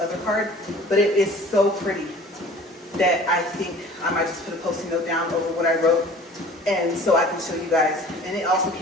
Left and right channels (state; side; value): normal; both; correlation 0.46